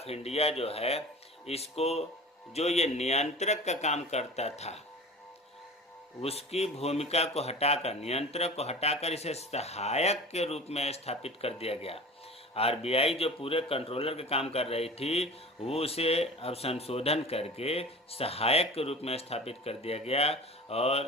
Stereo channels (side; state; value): both; normal; correlation 0.37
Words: इंडिया जो है, इसको जो ये नियंत्रक का काम करता था उसकी भूमिका को हटाकर, नियंत्रक को हटाकर इसे सहायक के रूप में स्थापित कर दिया गया। आरबीआई जो पूरे कंट्रोलर का काम कर रही थी, वो उसे अब संशोधन करके सहायक के रूप में स्थापित कर दिया गया।